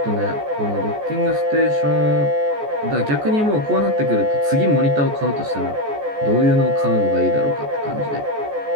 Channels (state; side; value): late; left; 14 ms